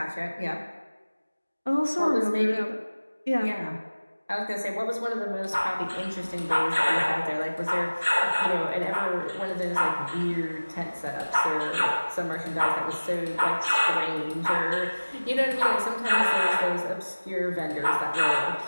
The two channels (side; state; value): both; inverted; correlation -1.00